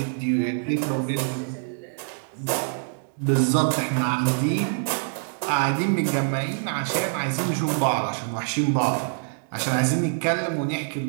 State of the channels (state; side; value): silent; left; digital silence